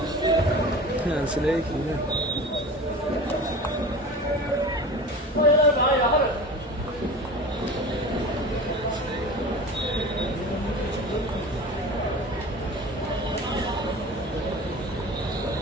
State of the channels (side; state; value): both; normal; correlation 0.35